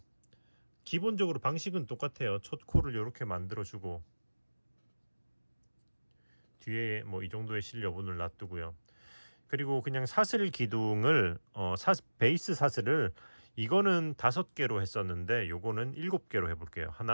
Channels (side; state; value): both; inverted; correlation -1.00